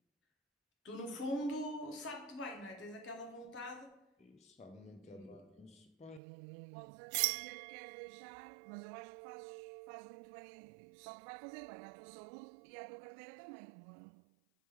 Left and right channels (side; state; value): left; drops out; at 6.2 s